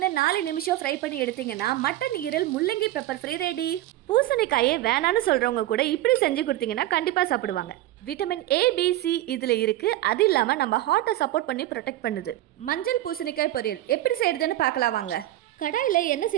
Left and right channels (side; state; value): left; quieter; 15.0 dB